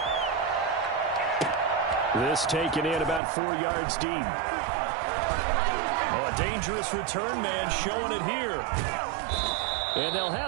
This taken in about 4 yards deep. Oh, a dangerous return man showing it here. And they'll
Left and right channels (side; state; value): left; drops out; at 3.2 s